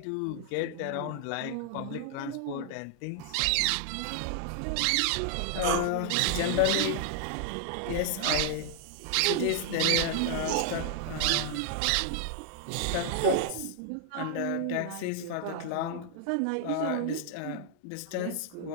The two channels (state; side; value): different; both; correlation -0.01